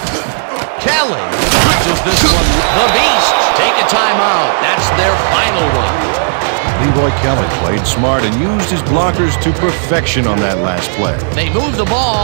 Kelly bridges this one. The Beast take a timeout. That's their final one. Leroy Kelly played smart and used his blockers to perfection on that last play. They move the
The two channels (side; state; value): left; silent; digital silence